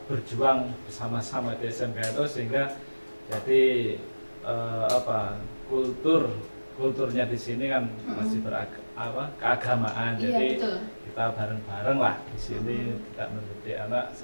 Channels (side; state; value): both; inverted; correlation -1.00